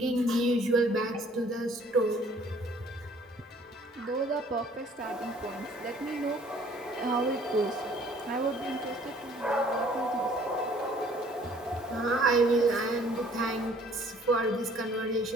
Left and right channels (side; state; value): both; normal; correlation 0.57